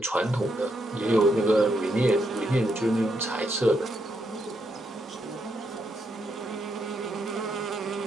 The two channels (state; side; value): normal; both; correlation 0.79